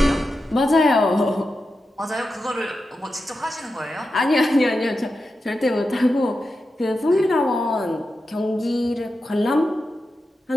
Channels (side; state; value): both; normal; correlation 0.90